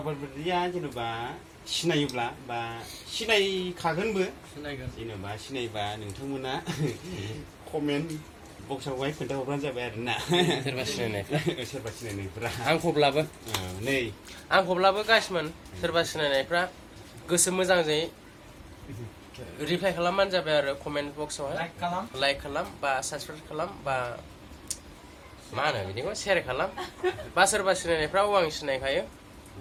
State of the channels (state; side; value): identical; both; correlation 1.00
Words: बायदिया जेनेबा सिनायोब्ला बा सिनायखागोनबो जेनेबा सिनायबा नोंथांमोना कमेन्ट बक्सआवहाय खोन्थाहरबानो जाबाय आरोना सोरबा सिनायनायफ्रा आंखौब्लाबो गासिमोन सोरबा सिनायनायफ्रा गोसो मोजांजों रिप्लाइ खालामबानो जाबाय आरो कमेन्ट बक्सआवहाय लाइक खालाम बा साबसक्राइब खालाम बा मा होनो बिदिखौ शेयार खालाम बा सोरबा सिनायनायफ्राव आं सिनायखायो